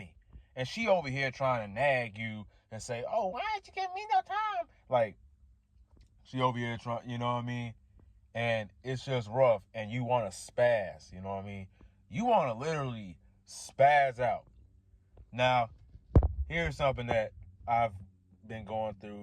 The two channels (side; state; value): both; identical; correlation 1.00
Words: And she over here trying to nag you and say, oh, why ain't you giving me no time? Like, she over here trying, you know what I mean? And it's just rough. And you want to spaz, you know what I mean? You want to literally spaz out. Now, here's something that I've been going